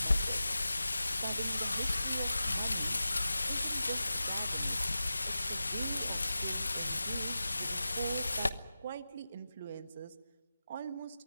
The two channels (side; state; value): both; inverted; correlation -0.93